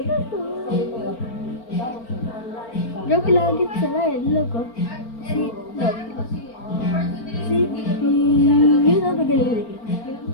Joke lagi sila eh, logo. Si, yun ang tagalilig.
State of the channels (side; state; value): right; late; 4.4 ms